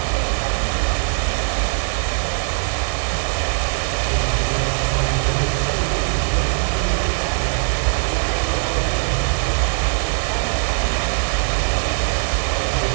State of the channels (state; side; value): silent; left; 65 dB below the other